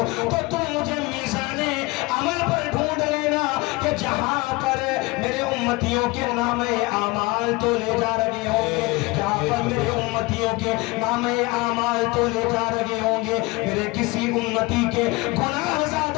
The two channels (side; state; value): right; quieter; 23.2 dB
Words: تو تم مجھے میزان عمل پر ڈھونڈ لینا کہ جہاں پر میرے امتیوں کے نام اعمال تو لے جا رہے ہوں گے، جہاں پر میرے امتیوں کے نام اعمال تو لے جا رہے ہوں گے، میرے کسی امتی کے گناہ